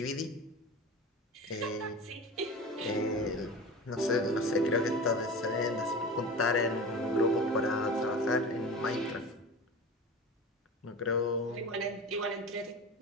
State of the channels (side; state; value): both; normal; correlation 0.32